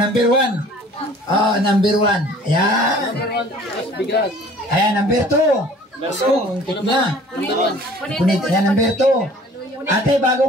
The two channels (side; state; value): both; normal; correlation 0.50